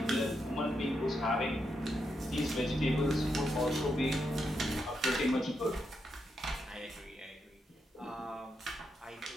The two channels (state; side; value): normal; both; correlation 0.83